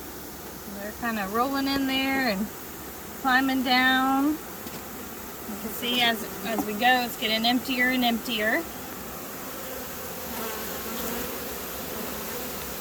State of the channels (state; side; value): identical; both; correlation 1.00